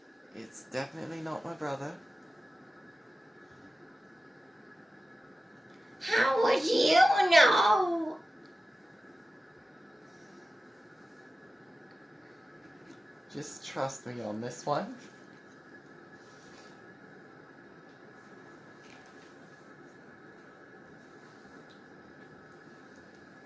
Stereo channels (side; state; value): both; normal; correlation 0.94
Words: It's definitely not my brother. How would you know? Just trust me on this one.